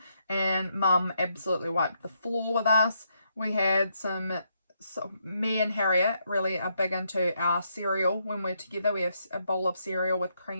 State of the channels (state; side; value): inverted; both; correlation -0.77